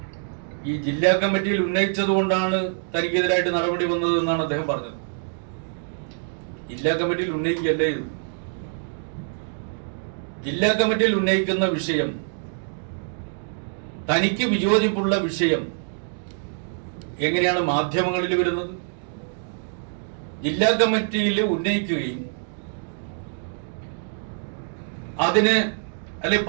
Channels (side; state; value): left; silent; 62 dB below the other